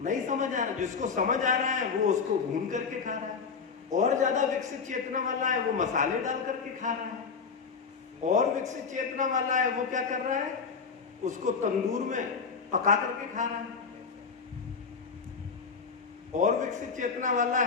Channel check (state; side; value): quieter; right; 5.5 dB